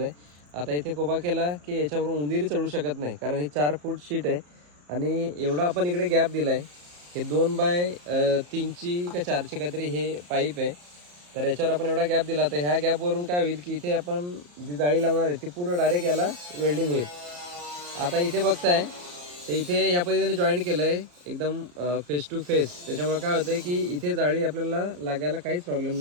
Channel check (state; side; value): late; left; 34 ms